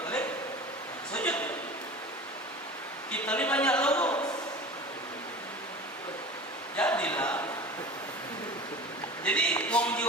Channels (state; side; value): normal; both; correlation 0.35